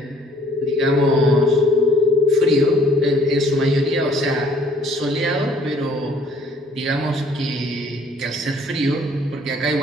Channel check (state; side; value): normal; both; correlation 0.59